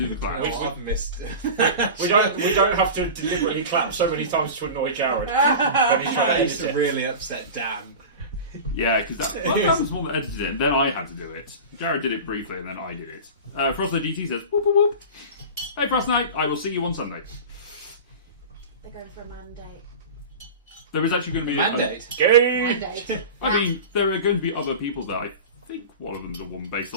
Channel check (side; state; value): both; inverted; correlation -0.31